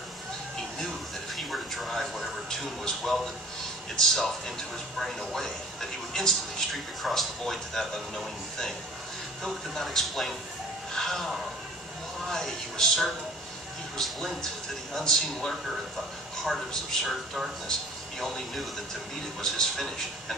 He knew that if he were to drive whatever tune was welded itself into his brain away, that he would instantly streak across the void to that unknowing thing. Philip could not explain how, why. He was certain he was linked to the unseen lurker at the heart of his absurd darkness. He only knew that to meet it was his finish, and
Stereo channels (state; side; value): normal; both; correlation 0.47